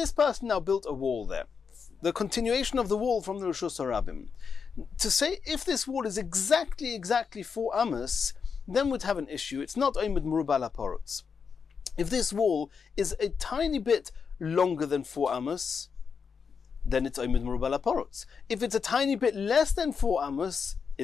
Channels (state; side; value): quieter; right; 6.0 dB